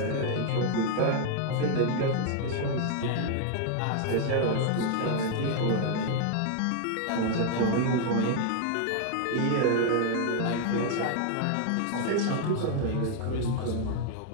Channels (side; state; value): both; different; correlation 0.00